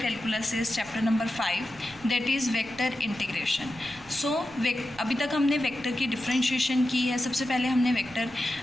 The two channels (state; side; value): noise; right; rumble, 24 dB below the sound